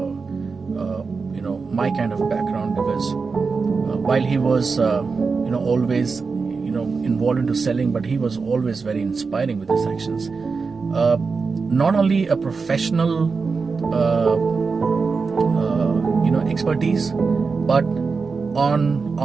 my kind of background. Because while he was always involved into selling, but he was always very inspiring with his actions. Not only a professional expertise, but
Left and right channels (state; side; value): quieter; left; 4.7 dB